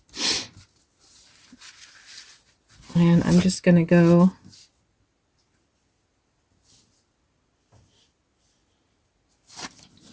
And I'm just going to go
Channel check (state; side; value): identical; both; correlation 1.00